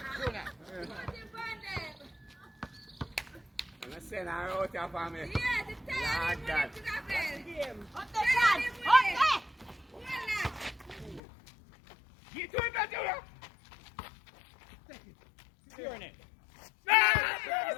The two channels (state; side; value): drops out; right; at 11.2 s